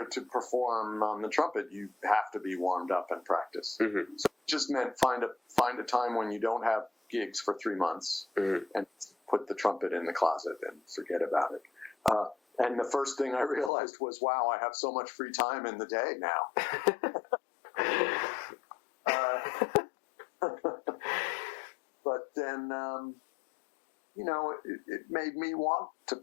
to perform on the trumpet, you have to be warmed up and practice. Mm-hmm. So it just meant find a time when you don't have gigs for 3 months, and put the trumpet in the closet and forget about it. And the first thing I realized was, wow, I have so much free time in the day now. But then, it made me want to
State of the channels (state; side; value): drops out; right; at 13.7 s